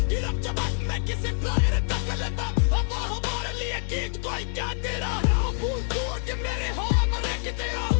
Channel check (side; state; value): right; silent; 58 dB below the other